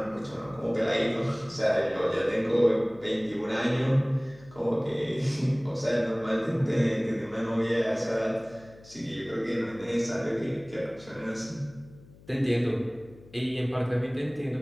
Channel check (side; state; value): left; noise; hum, 23 dB below the sound